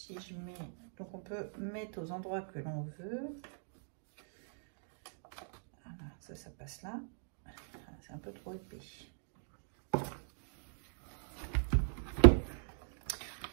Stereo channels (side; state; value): left; silent; digital silence